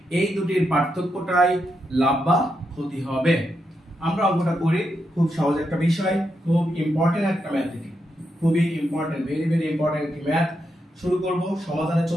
এই দুটির পার্থক্যটাই লাভ বা ক্ষতি হবে। আমরা অঙ্কটা করি, খুব সহজ একটা বিষয়, খুব ইম্পর্টেন্ট একটা ম্যাথ, খুবই ইম্পর্টেন্ট, ভেরি ভেরি ইম্পর্টেন্ট একটি ম্যাথ। শুরু করব, সমাধানে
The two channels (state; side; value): normal; both; correlation 0.83